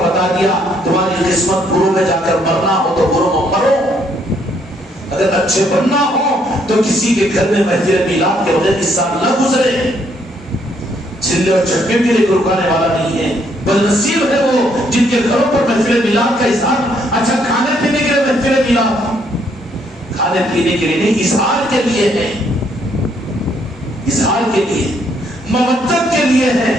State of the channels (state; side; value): normal; both; correlation 0.70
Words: دیا۔ تمہاری قسمت برو میں جا کر مرنا ہو تو برو میں مرو، اگر اچھے بننا ہو تو کسی کے گھر میں محفل میلاد کے بغیر اس سال نہ گزرے۔ چھلے اور چٹکے کے لیے رکانے والا نہیں ہے، بدنصیب ہے وہ جن کے گھروں پر محفل میلاد کا اظہار، اچھا کھانے پینے کے لیے محفل میلاد، کھانے پینے کے لیے نہیں، اظہار کے لیے ہے، اظہار کے لیے، مودت کے لیے ہے۔